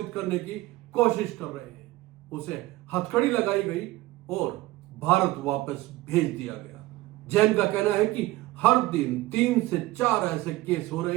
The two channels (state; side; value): quieter; left; 18.0 dB